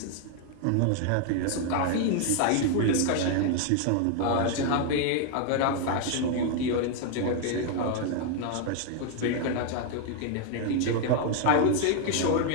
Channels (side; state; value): both; different; correlation 0.00